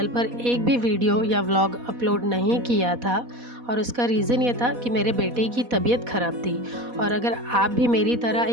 पर एक भी वीडियो या व्लॉग अपलोड नहीं किया था। और उसका रीज़न ये था कि मेरे बेटे की तबीयत ख़राब थी। और अगर आप भी मेरी तरह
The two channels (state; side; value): late; left; 4.1 ms